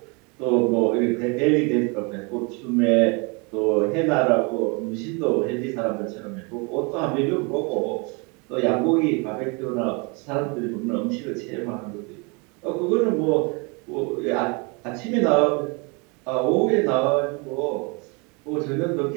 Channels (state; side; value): quieter; left; 31.1 dB